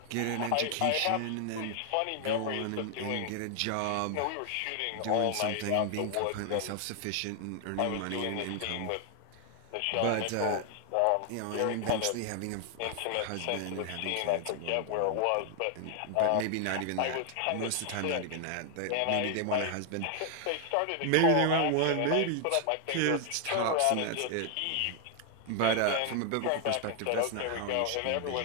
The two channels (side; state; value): both; different; correlation 0.00